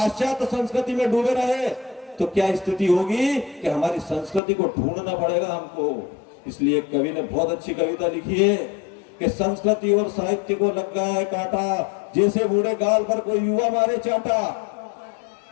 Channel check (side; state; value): right; drops out; at 4.4 s